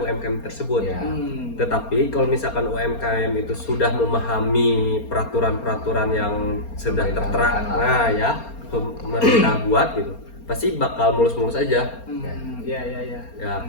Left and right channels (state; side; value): late; right; 4.3 ms